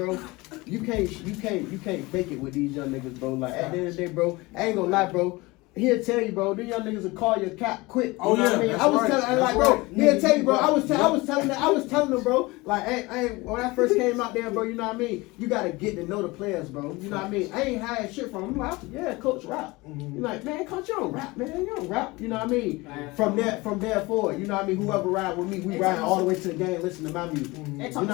you can't fake it with these young niggas, bro. Like at the end of the day, bro, I ain't gonna lie, bro. He'll tell you, bro. These young niggas will call your cap quick. You Oh, know what yeah, I mean? that's I was right, telling, that's like, bro. right. He'll tell you, bro. I was telling them, bro. Like, when I first came out there, bro. You know what I mean? You gotta get to know the players, bro. You know what I mean? I ain't hide shit from him. I'm like, yeah, coach rap. You're like, man, coach, you don't rap, man. You don't rap. You know what I mean? From there forward, you know what I mean? Whoever ride with me, we ride all the way to the game, listen to my music. You know what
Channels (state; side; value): quieter; right; 22.6 dB